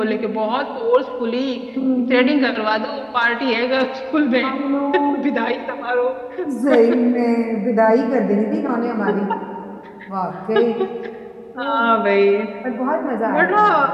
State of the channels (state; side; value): identical; both; correlation 1.00